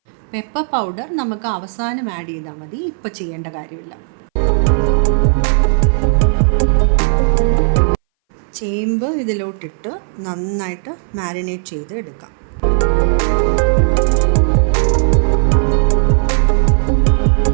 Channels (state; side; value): silent; left; 62 dB below the other